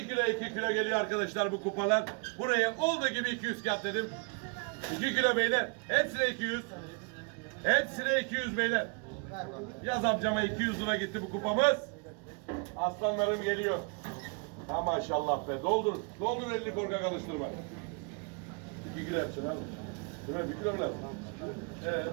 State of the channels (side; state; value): left; quieter; 35.3 dB